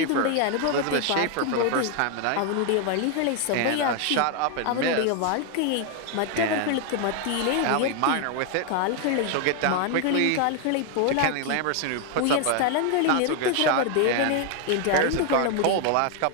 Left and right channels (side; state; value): both; different; correlation 0.00